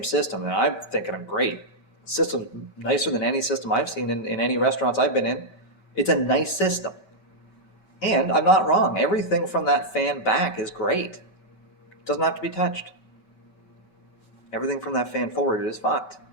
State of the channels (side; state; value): right; late; 5.2 ms